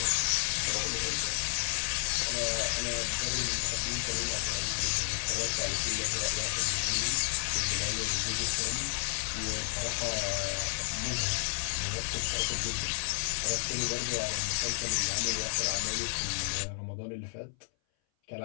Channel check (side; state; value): right; silent; 57 dB below the other